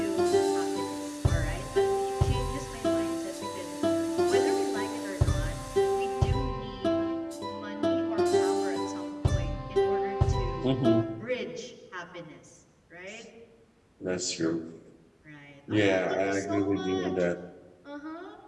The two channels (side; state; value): both; identical; correlation 1.00